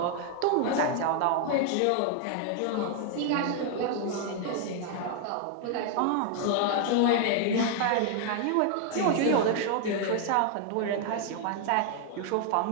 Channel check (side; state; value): both; different; correlation 0.00